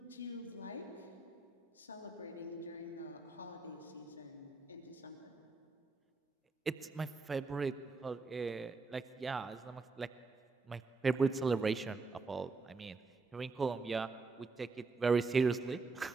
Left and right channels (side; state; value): left; quieter; 3.9 dB